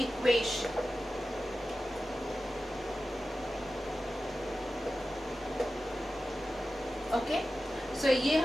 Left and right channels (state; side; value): normal; both; correlation 0.94